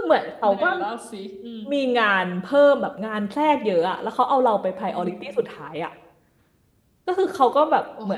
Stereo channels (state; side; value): identical; both; correlation 1.00